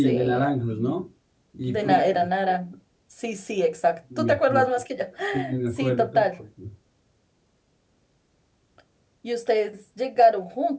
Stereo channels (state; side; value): identical; both; correlation 1.00